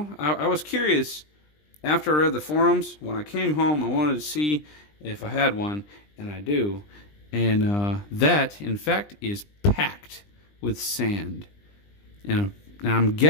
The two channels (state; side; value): late; right; 20 ms